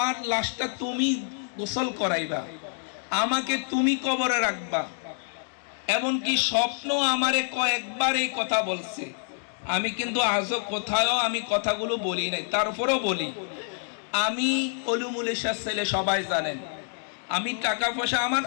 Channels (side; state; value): right; silent; digital silence